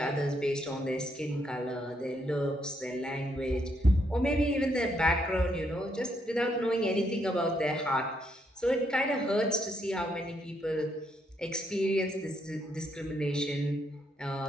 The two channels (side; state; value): both; normal; correlation 0.75